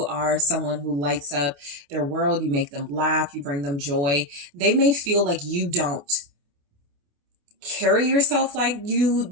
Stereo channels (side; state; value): left; late; 28 ms